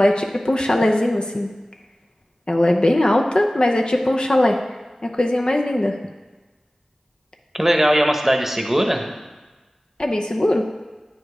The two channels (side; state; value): both; normal; correlation 0.97